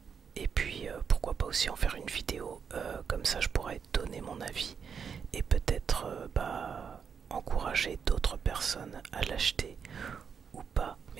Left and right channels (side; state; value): left; quieter; 6.7 dB